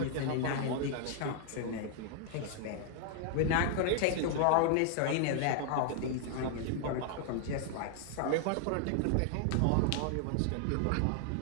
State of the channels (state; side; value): different; both; correlation 0.00